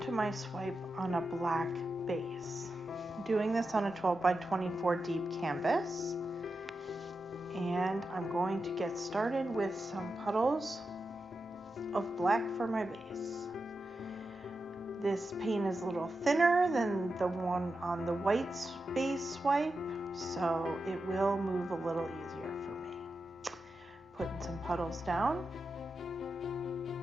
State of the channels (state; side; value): normal; both; correlation 0.89